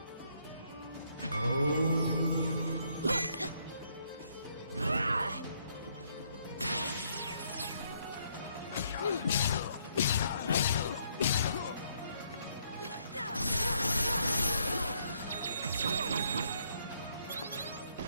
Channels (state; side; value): inverted; both; correlation -0.70